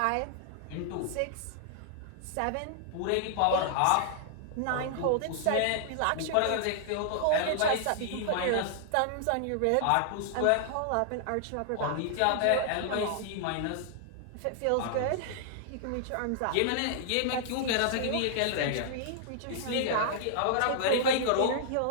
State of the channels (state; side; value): different; both; correlation -0.01